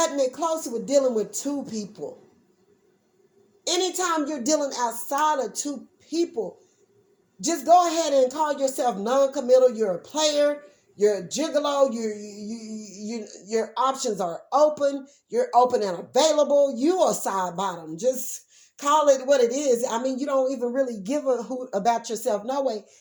it close with dealing with two people. Anytime you're dealing outside of two people, just go ahead and call yourself non-committal. You're a player. You're a gigolo. Your options are open. You're open and available. You are side bottom. Just call it what it is. I mean, you don't even really give a hoot about yourself no way,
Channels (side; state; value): both; identical; correlation 1.00